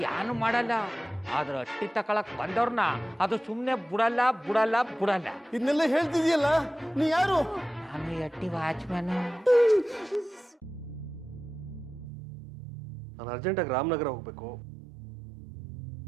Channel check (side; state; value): left; drops out; at 12.1 s